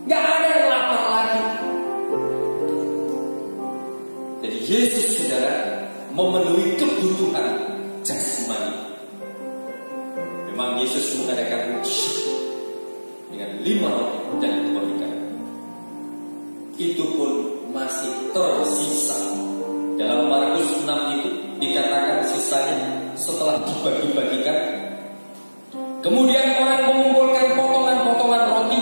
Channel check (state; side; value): inverted; both; correlation -1.00